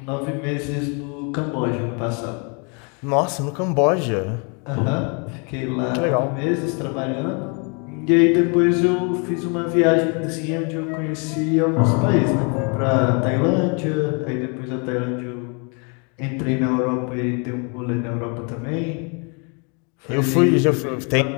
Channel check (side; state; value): right; quieter; 35.5 dB